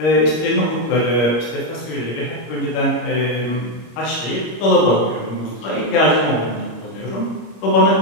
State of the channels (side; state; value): right; late; 25 ms